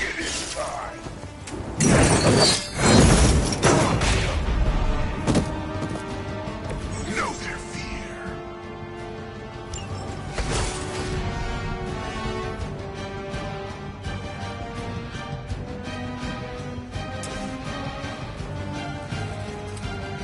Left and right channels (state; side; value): identical; both; correlation 1.00